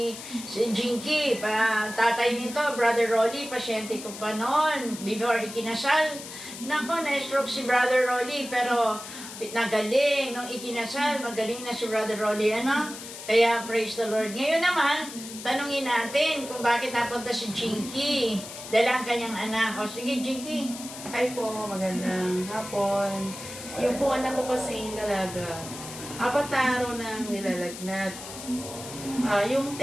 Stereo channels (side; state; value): left; noise; hiss, 12 dB below the sound